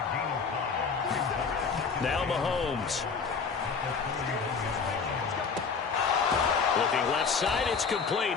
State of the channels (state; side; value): quieter; right; 5.5 dB